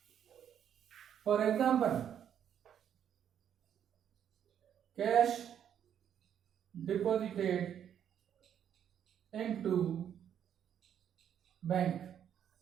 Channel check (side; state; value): left; quieter; 9.3 dB